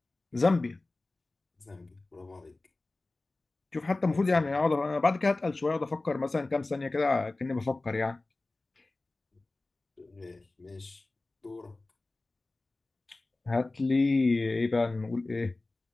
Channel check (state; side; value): quieter; right; 3.1 dB